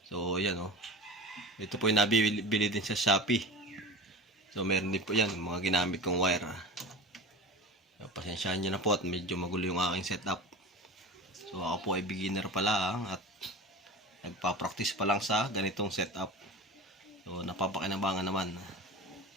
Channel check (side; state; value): both; normal; correlation 0.32